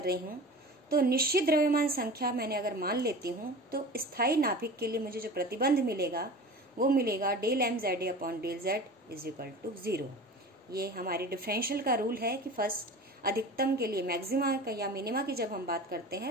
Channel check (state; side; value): normal; both; correlation 0.36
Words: रही हूँ तो निश्चित द्रव्यमान संख्या मैंने अगर मान लेती हूँ तो स्थायी नाभिक के लिए मुझे जो प्रतिबंध मिलेगा वो मिलेगा del mZA upon del Z is equal to 0। ये हमारी डिफरेंशियल का रूल है कि फर्स्ट अधिकतम के लिए मैक्सिमा का या मिनिमा की जब हम बात करते